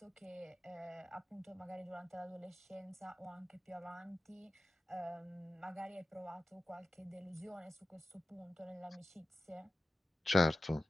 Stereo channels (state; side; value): normal; both; correlation 0.92